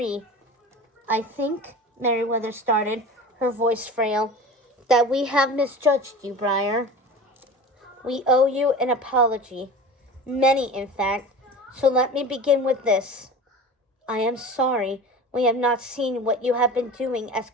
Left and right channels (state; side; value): normal; both; correlation 0.35